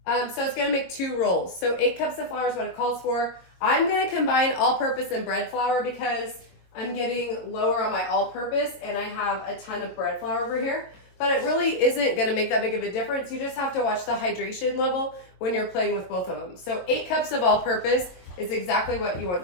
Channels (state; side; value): late; right; 22 ms